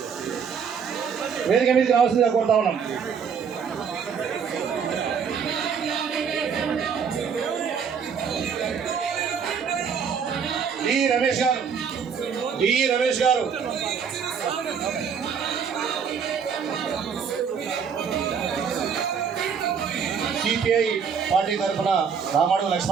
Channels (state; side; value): quieter; left; 6.7 dB